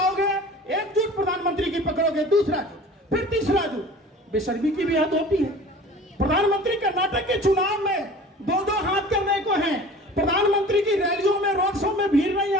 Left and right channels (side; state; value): both; normal; correlation 0.42